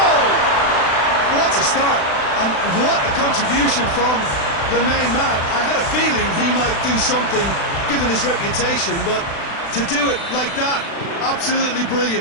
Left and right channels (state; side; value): late; right; 36 ms